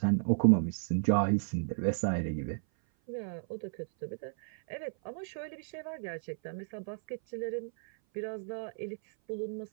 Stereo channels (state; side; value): silent; left; 56 dB below the other